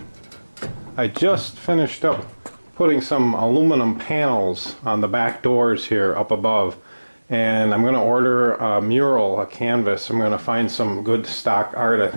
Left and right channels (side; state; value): both; inverted; correlation -1.00